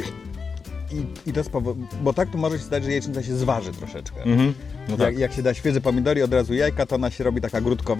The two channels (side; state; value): right; quieter; 5.2 dB